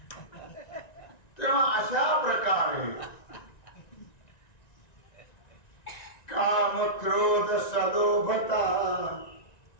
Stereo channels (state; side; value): late; right; 1.9 ms